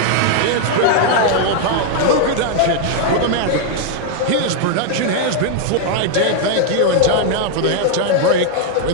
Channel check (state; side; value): different; both; correlation 0.00